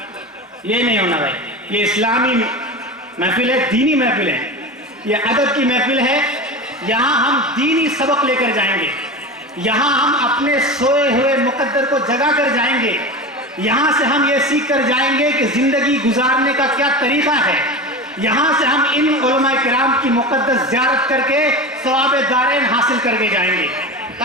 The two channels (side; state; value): both; normal; correlation 0.27